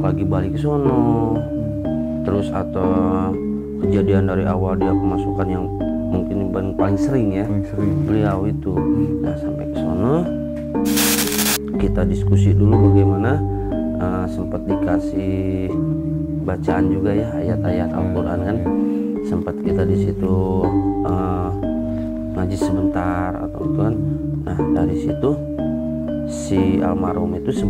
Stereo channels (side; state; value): both; identical; correlation 1.00